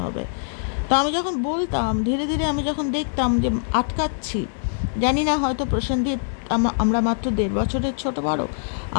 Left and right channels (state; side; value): silent; right; digital silence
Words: হবে। তো আমি যখন বলতাম, ধীরে ধীরে আমি যখন দেখতাম যে আটকাচ্ছি, জানি না হয়তো প্রসেনজিৎ, আমরা মাত্র 1.5 বছরের ছোট বড়,